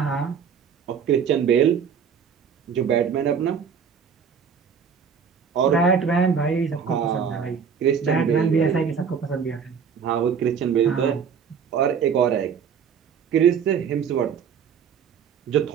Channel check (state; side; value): quieter; left; 6.9 dB